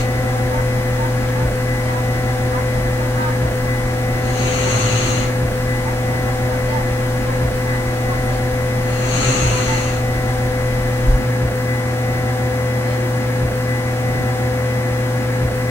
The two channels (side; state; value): both; normal; correlation 0.81